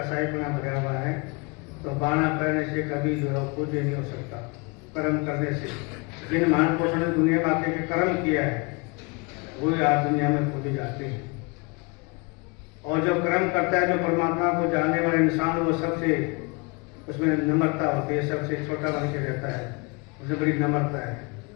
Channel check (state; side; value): quieter; right; 29.1 dB